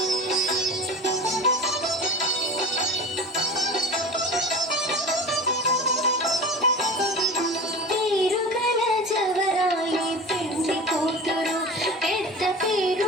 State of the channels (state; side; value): normal; both; correlation 0.34